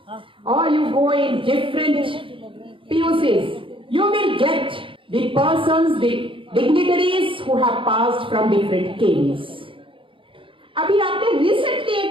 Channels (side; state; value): left; late; 0.25 ms